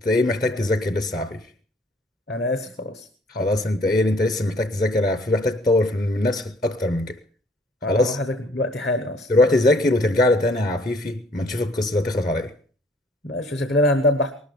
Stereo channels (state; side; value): normal; both; correlation 0.59